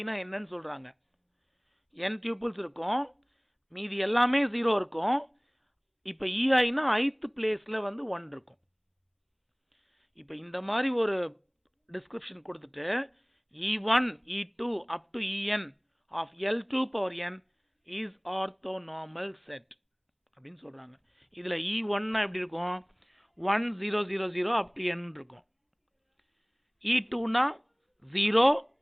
na என்னன்னு சொல்றாங்க, n tuples இருக்கும், மீதி எல்லாமே 0 இருக்கும். இப்போ EI na ith placeல வந்து 1 இருக்கும். இப்போ இந்த மாதிரி ஒரு டிஸ்கிரிப்ஷன் கொடுத்துட்டு E1 E2 up to En of L2 power n is orthonormal set அப்படின்னு சொல்றாங்க. இதுல E1 னா எப்படி இருக்கும், 1 0 0 0 up to n இருக்கும். E2 னா 0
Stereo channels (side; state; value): both; identical; correlation 1.00